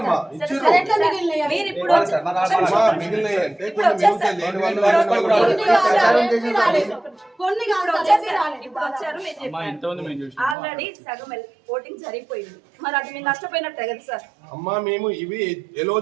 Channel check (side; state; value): left; drops out; at 10.6 s